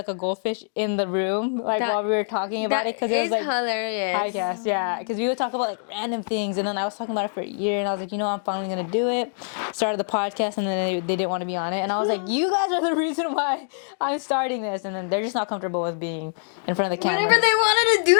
a goldfish in the room like while we were talking about it because it was like hilarious. podcast, yeah, because we would talk about like random things, and then I was talking about it for a year, and I was like, I'm finally gonna do it. Started the podcast, and then they didn't want to be on it, and I was like, you guys are the reason why I'm starting this, and then they're just not comfortable with being in front of the camera. Whenever they wanted to do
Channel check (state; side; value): silent; right; digital silence